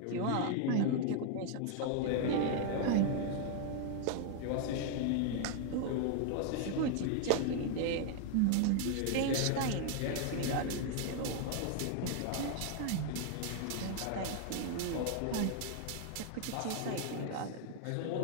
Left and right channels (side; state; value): both; different; correlation 0.00